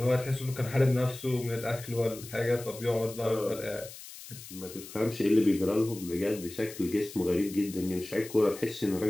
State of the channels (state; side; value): noise; left; hiss, 15 dB below the sound